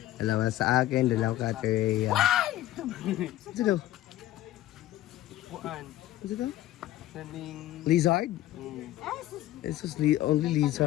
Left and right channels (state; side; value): quieter; right; 14.5 dB